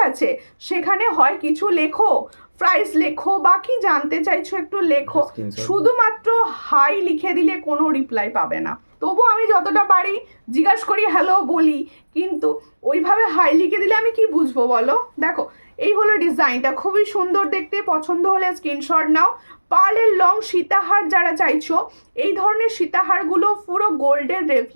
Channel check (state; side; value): inverted; both; correlation -1.00